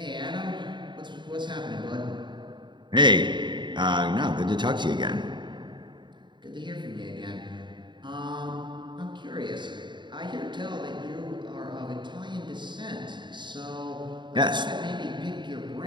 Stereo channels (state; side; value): late; left; 0.22 ms